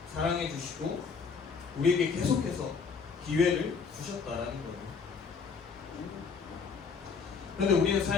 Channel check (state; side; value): quieter; right; 5.5 dB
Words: 사랑해주시고 우리에게 계속해서 기회를 주셨다는 거예요. 그런데 우리는